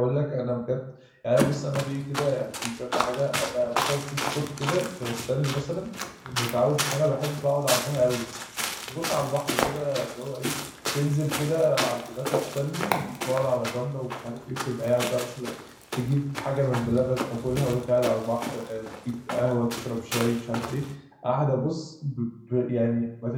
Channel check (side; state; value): both; identical; correlation 1.00